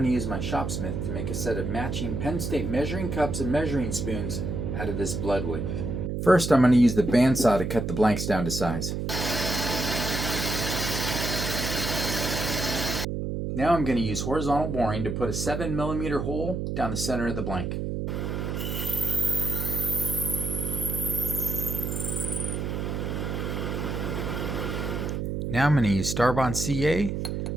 to use my shopsmith to make a set of matching Penn State measuring cups and measuring spoons out of this bloodwood. First I'm going to use the bandsaw to cut the blanks down to size. Now I'm going to use horizontal boring to put a 7mm hole down the center of the blank. Now I'm going to use Starbond CA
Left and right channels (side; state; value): right; noise; hum, 2 dB below the sound